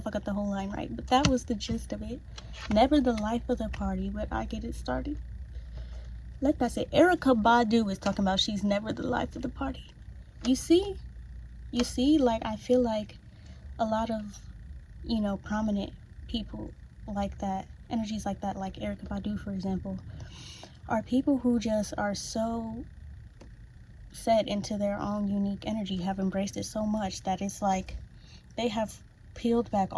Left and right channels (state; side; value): identical; both; correlation 1.00